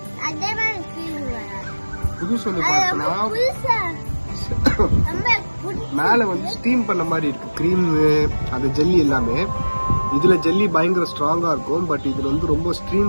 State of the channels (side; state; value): both; inverted; correlation -1.00